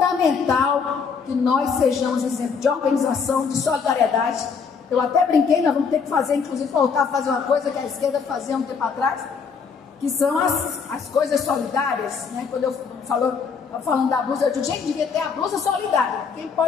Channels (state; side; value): quieter; right; 5.8 dB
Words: que nós sejamos exemplo de organização, de solidariedade. Eu até brinquei, nós vamos ter que fazer, inclusive voltar a fazer uma coisa que a esquerda fazia um tempo atrás, que são as coisas solidárias, né? Quando eu falando da blusa, eu digo, gente, devia ter a blusa solidária. Quem